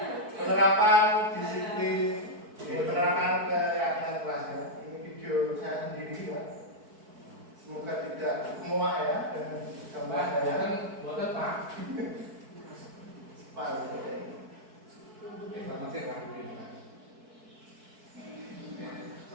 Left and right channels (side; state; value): left; late; 4.6 ms